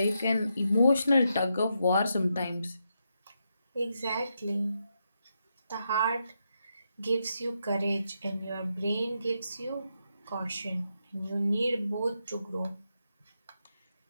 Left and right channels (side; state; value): both; inverted; correlation -0.83